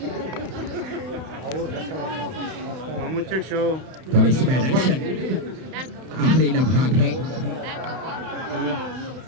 आखिरी लम्हात है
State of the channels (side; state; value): left; late; 31 ms